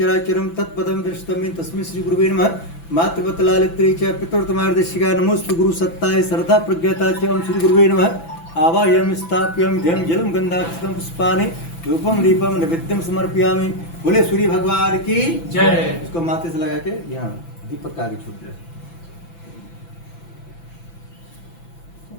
तत्पदं दृष्टं तस्मै श्री गुरुवे नमः। मातृवत लालित्री च पितृतमार्दशिका नमोस्तु गुरु सत्ताय श्रद्धा प्रज्ञता च ओम श्री गुरुवे नमः। आवाहयामि स्थाप्यामि ध्यं जलं गन्धाक्षतं पुष्पाणि धूपं दीपं नैवेद्यं समर्पयामि। बोले सूर्य भगवान की जय। इसको माथे से लगा के यहाँ दीपक का आगे छोड़ दे।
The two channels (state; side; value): late; right; 6.0 ms